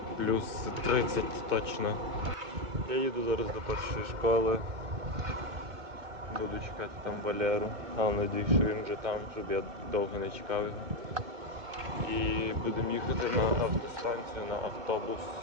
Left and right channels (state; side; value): late; left; 2.2 ms